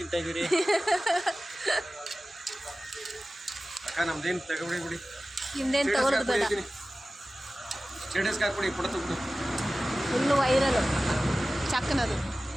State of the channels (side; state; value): both; normal; correlation 0.96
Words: ಇದ್ದೀರಿ ಅಕ್ಕ? ನಮ್ದೇನು ತಗೊಬಿಡಿ ಬಿಡಿ, ಹಿಂದೇನು ತಗೊಳ್ಳೋದು ಬೇಡ. ಸ್ಟೇಟಸ್ಗೆ ಹಾಕ್ಬಿಡಿ, ಫೋಟೋ ತಗೊಬಿಡಿ. ಫುಲ್ಲು ವೈರಲ್ ಚಾಕ್ನದು.